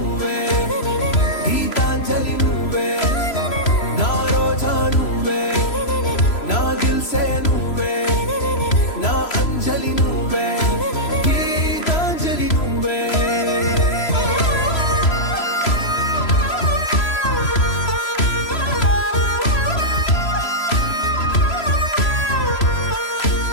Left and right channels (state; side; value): late; right; 3.0 ms